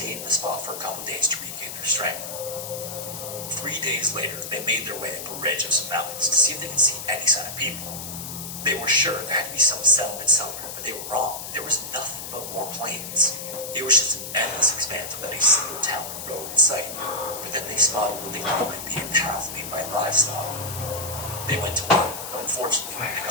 in the spot for a couple days to regain their strength. 3 days later, they made their way up a ridge of some mountains to see if they could see any sign of people. They were sure there had to be some settlement somewhere, but they were wrong. There was nothing but more plains. It was just an endless expanse without a single town or road in sight. But then they spotted what they thought might be a path made by livestock. They went to work, but unfortunately, when they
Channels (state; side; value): noise; left; hiss, 8 dB below the sound